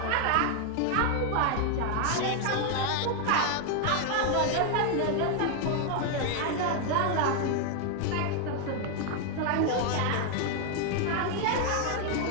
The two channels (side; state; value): both; different; correlation 0.00